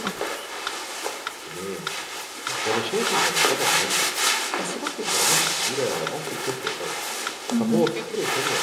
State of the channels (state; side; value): identical; both; correlation 1.00